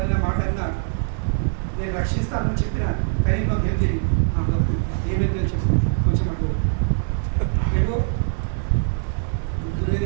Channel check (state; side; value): silent; left; digital silence